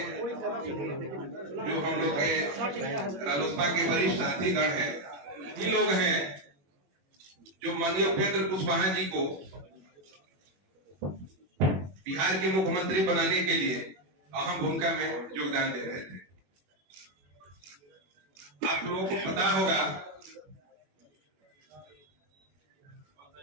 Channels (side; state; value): left; late; 21 ms